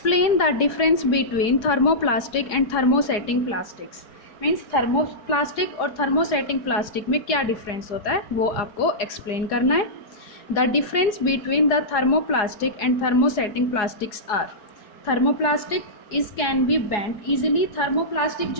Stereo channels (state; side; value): late; right; 4.8 ms